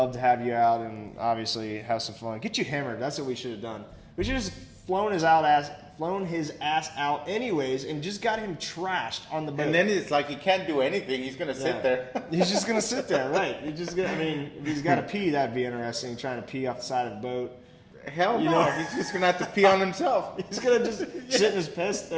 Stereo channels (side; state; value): both; identical; correlation 1.00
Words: to have you out and obviously have some fun. Get you hammered. That's what we should have done. We should have just flown his ass out anyways, and just got him trashed on the boat. And then it's like he can't do anything. He's gonna sit there. He's just gonna sit there, right? He's just gonna. I mean, if he's got to pee, that'd be interesting. Trying to pee off the side of the boat. Hell You no. know? He's just gonna have to pee on himself. He's gonna just sit in his piss.